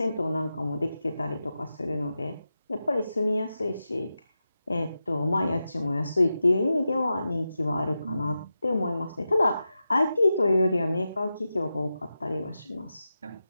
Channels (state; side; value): inverted; both; correlation -0.91